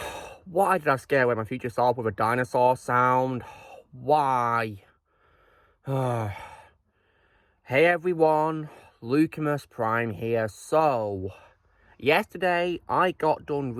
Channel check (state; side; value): identical; both; correlation 1.00